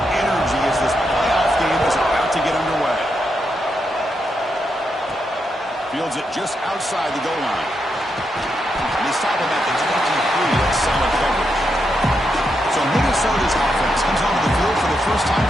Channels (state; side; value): normal; both; correlation 0.83